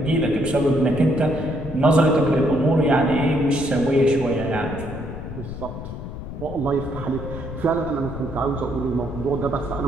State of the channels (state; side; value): noise; left; rumble, 9 dB below the sound